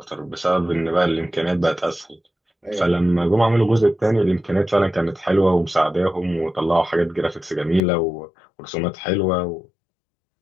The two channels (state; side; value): drops out; right; at 7.8 s